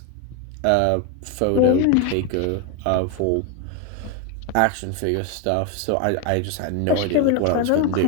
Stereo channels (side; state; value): both; different; correlation 0.01